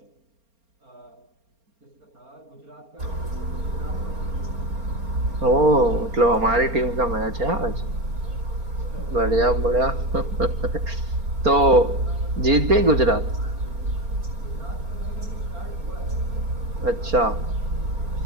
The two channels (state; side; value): late; left; 4.3 ms